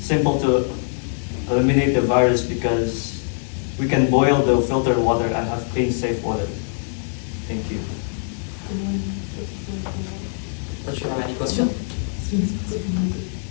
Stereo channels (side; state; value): right; silent; digital silence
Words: to eliminate the virus because we can boil the filtered water and have clean, safe water. Thank you. Any question?